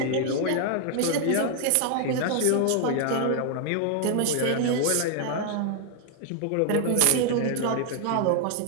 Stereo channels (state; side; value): different; both; correlation 0.00